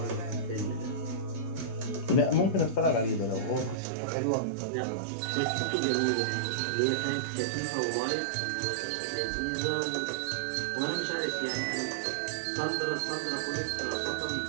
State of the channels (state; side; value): drops out; left; at 3.8 s